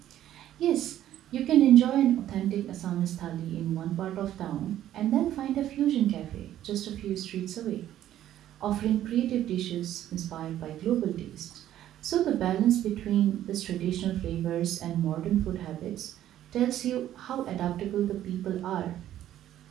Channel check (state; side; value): quieter; left; 12.2 dB